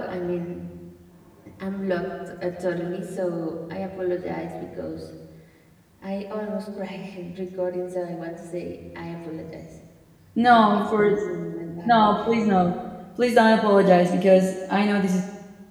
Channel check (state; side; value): identical; both; correlation 1.00